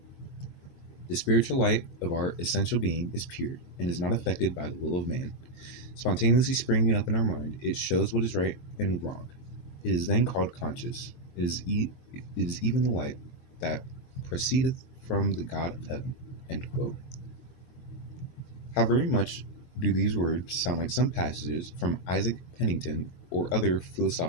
the spiritual light of our essential being is pure and is not affected by the will of man. Spontaneously springing up in our mind, it shows what is right and wrong. It is then called conscious. It is even the light that proceedeth from the God of heaven. End quote. How very much do these words sound like some passages from Isaac Pennington or other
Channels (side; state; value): right; late; 22 ms